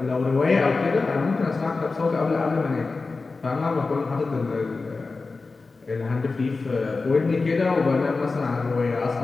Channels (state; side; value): quieter; right; 3.9 dB